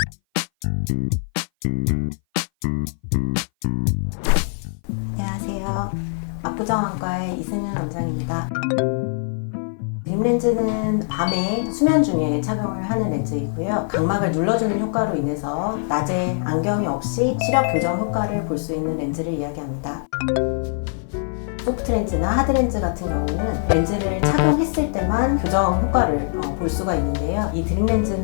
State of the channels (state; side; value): silent; right; 58 dB below the other